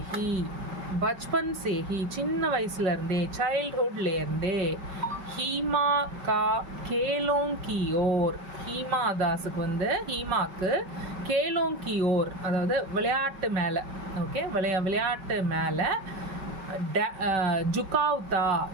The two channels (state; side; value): late; left; 5.2 ms